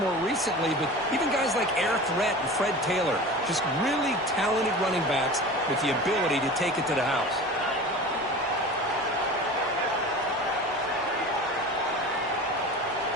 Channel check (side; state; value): both; normal; correlation 0.35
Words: recently, but even guys like Eric Rhett and Fred Taylor, just really talented running backs with the ability to take it to the house.